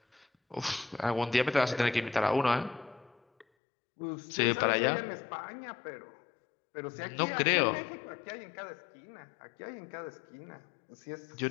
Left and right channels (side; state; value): right; drops out; at 3.5 s